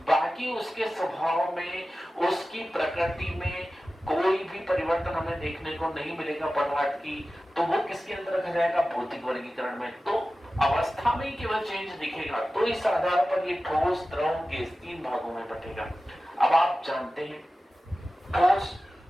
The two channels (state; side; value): normal; both; correlation 0.95